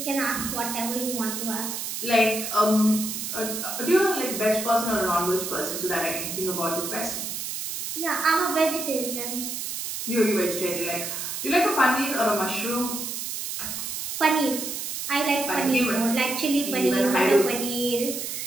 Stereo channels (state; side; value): noise; right; hiss, 5 dB below the sound